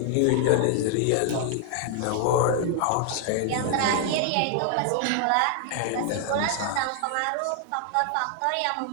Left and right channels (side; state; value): both; different; correlation 0.00